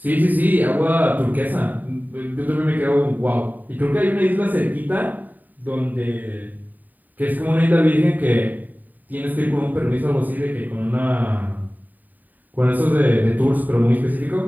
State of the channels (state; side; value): late; left; 0.085 ms